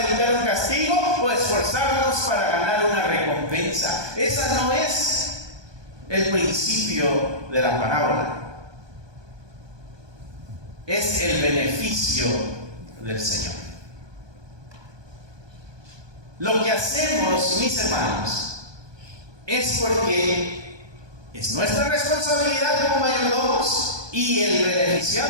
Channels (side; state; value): left; late; 1.2 ms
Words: evitar un castigo o esforzarnos para ganar una recompensa. Esa no es el principio de la parábola. Es el beneficio del Señor. Lo que hacemos, mis hermanos, es porque es nuestra responsabilidad como mayordomos y el